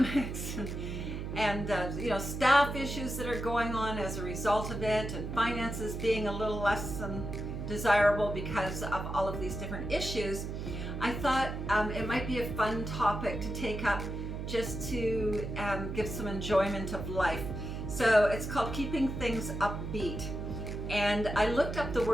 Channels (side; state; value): right; noise; hum, 5 dB below the sound